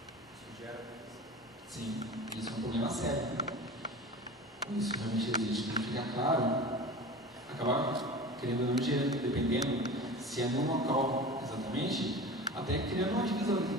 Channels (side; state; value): both; normal; correlation 0.34